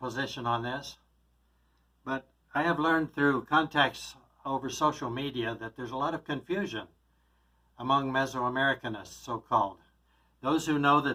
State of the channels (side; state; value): both; identical; correlation 1.00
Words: on this, but I have learned through contacts over social media that there's a lot of confusion among Mesoamericanists, so-called. Those who know